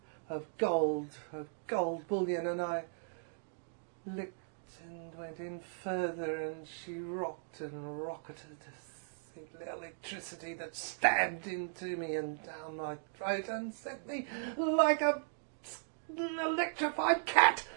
of gold bullion, and I licked and went in further, and she rocked and rocketed, the electricity that stabbed into me and down my throat and set me like an electrified cat,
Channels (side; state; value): left; silent; digital silence